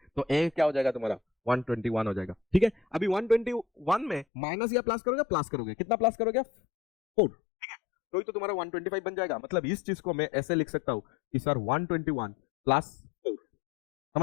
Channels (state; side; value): drops out; right; at 4.2 s